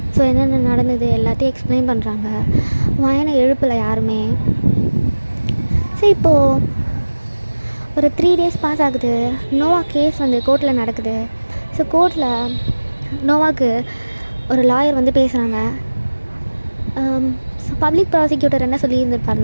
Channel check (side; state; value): both; inverted; correlation -1.00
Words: ஸோ என்னென்ன நடந்தது எல்லாத்தையும் எக்ஸ்பிளைன் பண்ணுறாங்க. வயனை எழுப்பலை யாருமே. ஸோ இப்போது ஒரு 3 days பாஸ் ஆகுது. நோவா கேஸ் வந்து கோர்ட்டில் நடக்குது. ஸோ கோர்ட்டில் நோவாக்கு ஒரு லாயர் வந்து பேசுகிறாங்க. பப்ளிக் ப்ராசிக்யூட்டர் என்ன